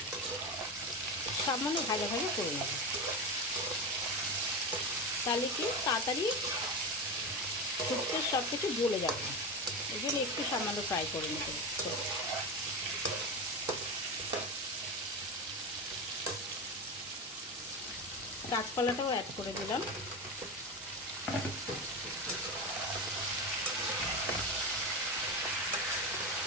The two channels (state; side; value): normal; both; correlation 0.20